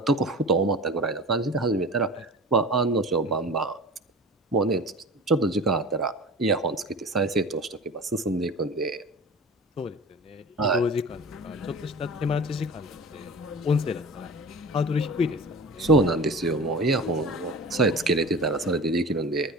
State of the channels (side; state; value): both; normal; correlation 0.36